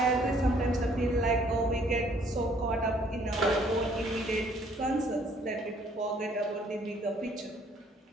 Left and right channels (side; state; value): both; normal; correlation 0.62